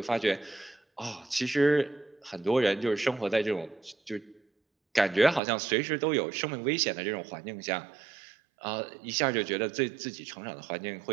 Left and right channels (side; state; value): left; drops out; at 5.4 s